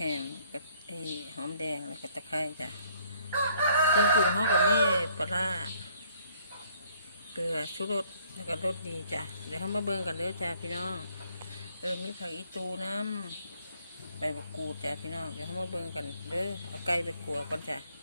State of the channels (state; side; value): inverted; both; correlation -0.63